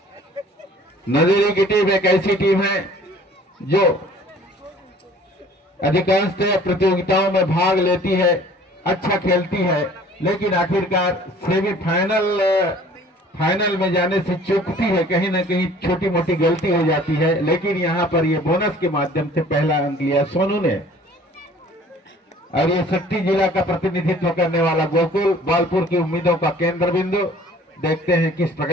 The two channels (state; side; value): normal; both; correlation 0.51